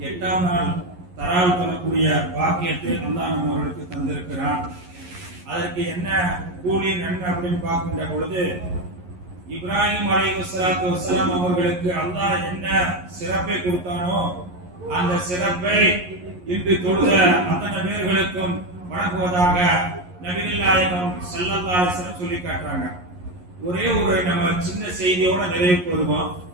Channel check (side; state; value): left; late; 11 ms